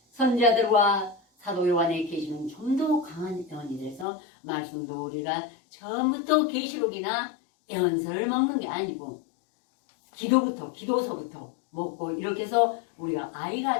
선자들과 사도 요한의 계시는 좀 더 강한 애언이 돼서 말씀도 우리가 처음부터 계시록이나 애언서를 먹는 게 아니고 기도서부터 먹고 이렇게 해서 우리가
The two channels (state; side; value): drops out; right; at 4.0 s